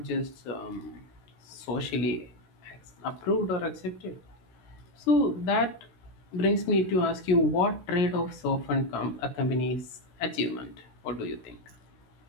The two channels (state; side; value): late; right; 17 ms